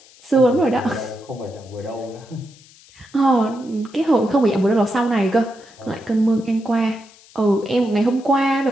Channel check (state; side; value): noise; left; hiss, 25 dB below the sound